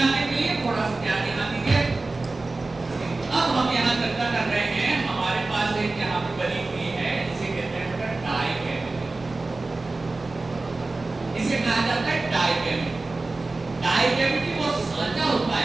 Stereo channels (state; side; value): quieter; left; 3.4 dB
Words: के लिए थोड़ा सा ध्यान यहाँ दीजिए। अब हम यहाँ चर्चा कर रहे हैं, हमारे पास एक यहाँ पे बनी हुई है, इसे कहते हैं डाई कैविटी। इसे कहा जाता है डाई कैविटी। डाई कैविटी वो सांचा होता